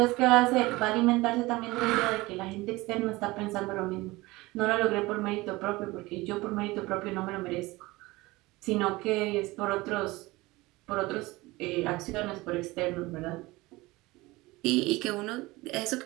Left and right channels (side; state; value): left; quieter; 21.0 dB